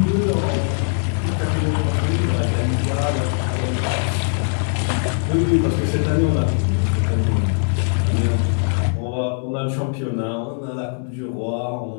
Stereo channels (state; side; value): silent; right; 65 dB below the other